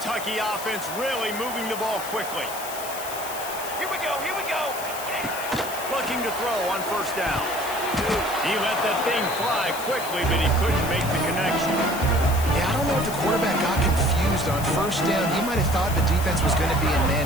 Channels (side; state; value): left; noise; hiss, 10 dB below the sound